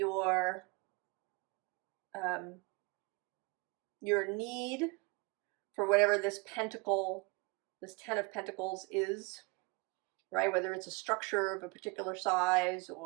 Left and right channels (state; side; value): quieter; left; 28.0 dB